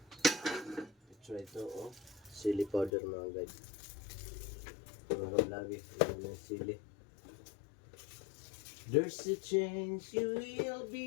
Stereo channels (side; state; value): right; drops out; at 2.9 s